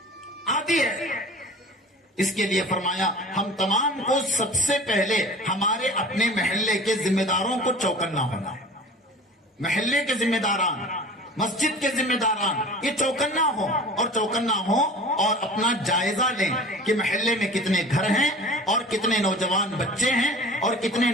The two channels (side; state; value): both; normal; correlation 0.40